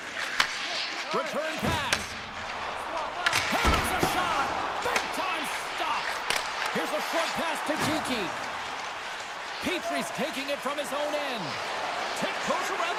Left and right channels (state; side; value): identical; both; correlation 1.00